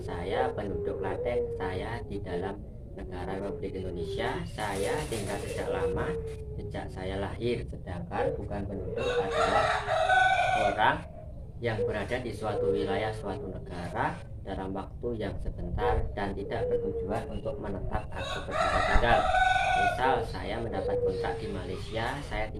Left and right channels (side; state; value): both; identical; correlation 1.00